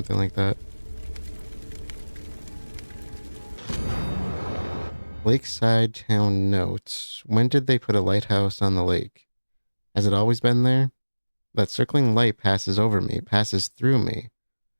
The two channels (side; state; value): both; inverted; correlation -1.00